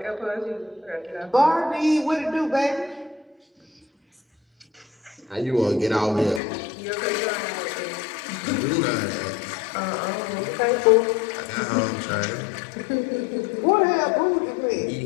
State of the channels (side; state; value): right; drops out; at 6.4 s